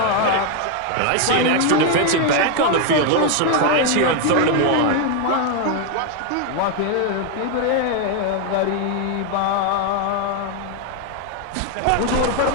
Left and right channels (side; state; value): both; different; correlation 0.01